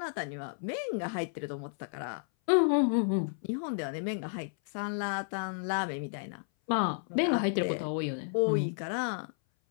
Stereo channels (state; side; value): silent; right; 56 dB below the other